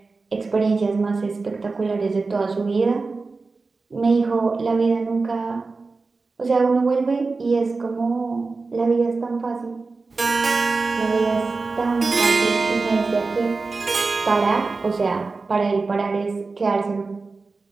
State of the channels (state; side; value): quieter; left; 4.0 dB